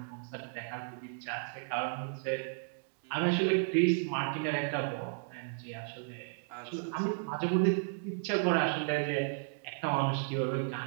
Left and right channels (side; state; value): left; silent; digital silence